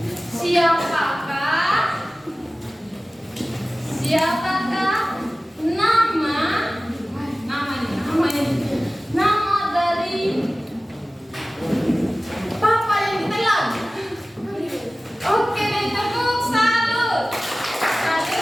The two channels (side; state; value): both; normal; correlation 0.97